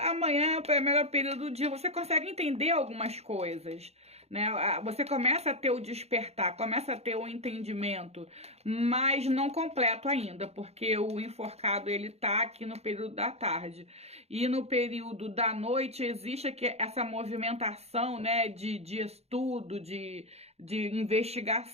é o melhor período do dia. Você consegue entender algumas coisas, né? Você começa a ter o despertar, começa a ter o entendimento, mas não completo ainda, porque o enforcado ele tá aqui no período da tarde. E no período da noite existe aqui essa movimentação, né, de estudo, de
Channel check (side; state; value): left; late; 0.31 ms